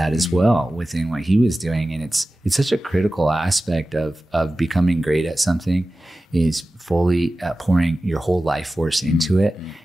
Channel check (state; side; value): normal; both; correlation 0.95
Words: as well within what he was doing. And it's such a critical aspect of becoming great at something, is fully pouring your whole life force into it.